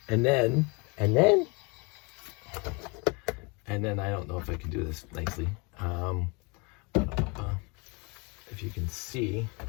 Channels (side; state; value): right; quieter; 30.1 dB